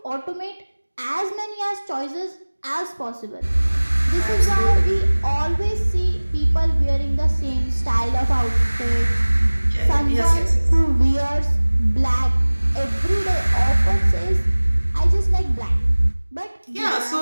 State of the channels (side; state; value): both; inverted; correlation -1.00